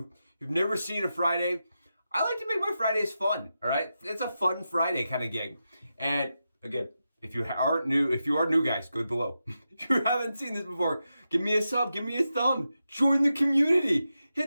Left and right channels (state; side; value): inverted; both; correlation -0.89